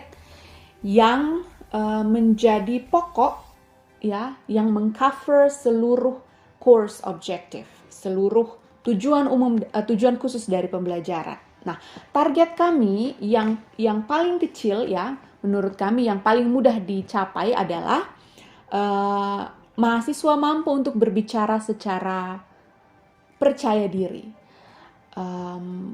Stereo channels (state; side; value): identical; both; correlation 1.00